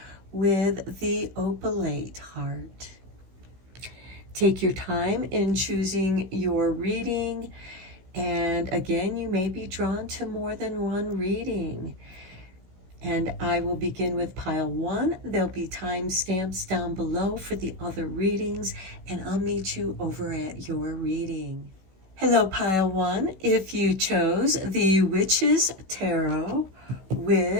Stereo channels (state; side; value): late; left; 16 ms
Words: with the Opalite heart. Take your time in choosing your reading. And again, you may be drawn to more than one reading. And I will begin with pile 1. There'll be timestamps down below for the other readings, and I'll meet you over at your reading. Hello, pile 1. If you chose the Witch's Tarot